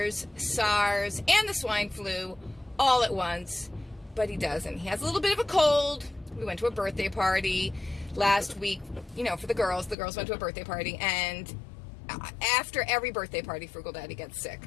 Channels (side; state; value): right; drops out; at 10.0 s